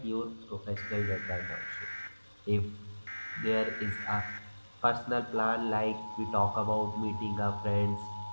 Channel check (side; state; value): both; inverted; correlation -1.00